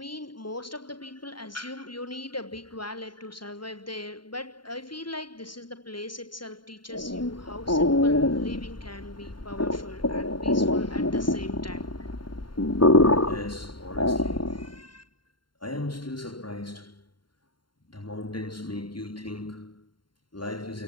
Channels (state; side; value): late; right; 0.72 ms